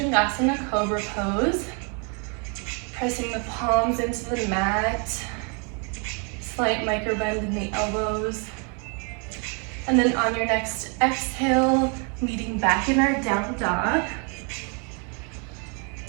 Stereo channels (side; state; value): left; quieter; 36.3 dB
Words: Cobra pose. Pressing the palms into the mat. Slight micro bend in the elbows. And then on your next exhale, meeting back in our down dog.